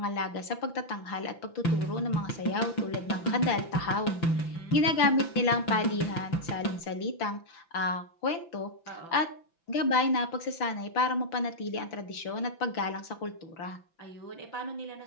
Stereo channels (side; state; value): right; late; 5.9 ms